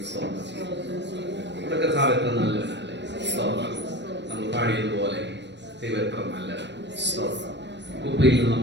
സ്തോത്രം ചെയ്യും. നമ്മുടെ കർത്താവ് എത്ര നല്ലവനല്ലേ. സ്തോത്രം. നമ്മൾ പാടിയതുപോലെ ദൈവം എത്ര നല്ല സ്തോത്രം. കുപ്പയിൽ നിന്ന്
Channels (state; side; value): late; left; 0.52 ms